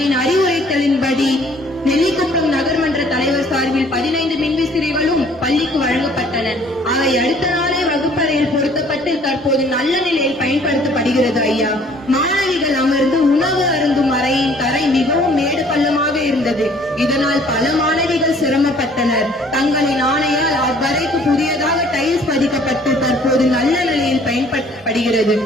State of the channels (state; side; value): normal; both; correlation 0.57